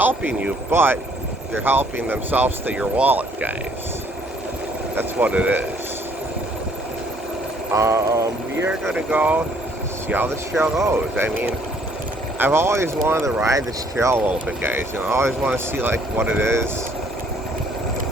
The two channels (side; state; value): both; normal; correlation 0.63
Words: you, but they're helping themselves to your wallet, guys. That's what it is. We are gonna go see how this trail goes. I mean, I've always wanted to ride this trail a little bit, guys. I always want to see like what it is.